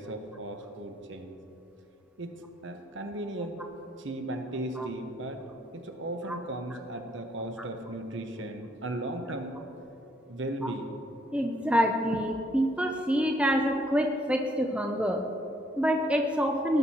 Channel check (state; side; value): normal; both; correlation 0.69